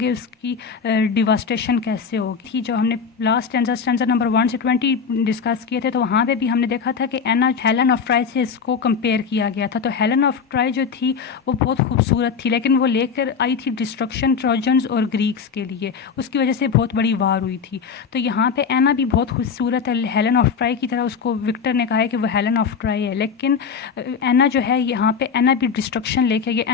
اس کی ڈیواسٹیشن کیسے ہوگی. جو ہم نے لاسٹ اسٹینزا نمبر 1 سے 20 ڈسکس کیے تھے تو وہاں پہ بھی ہم نے دیکھا تھا کہ اینا ہیلن آف ٹرائی سے اس کو کمپیئر کیا گیا تھا. تو ہیلن آف ٹرائی جو تھی وہ بہت خوبصورت تھی لیکن وہ لے کر آئی تھی ڈسٹرکشن ٹروجنز اور گریکس کے لیے, اس کی وجہ سے بہت بڑی وار ہوئی تھی. تو یہاں پہ اینا بھی بہت خوبصورت ہے ہیلن آف ٹرائی کی طرح, اس کو وکٹر نے کہا ہے کہ وہ ہیلن آف ٹرائی ہے, لیکن اینا جو ہے یہاں پہ اینا بھی ڈسٹرکشن لے کے گیا.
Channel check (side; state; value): right; quieter; 6.0 dB